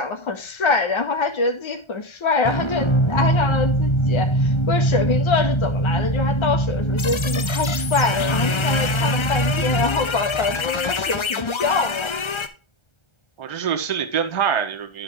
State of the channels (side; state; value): right; late; 1.3 ms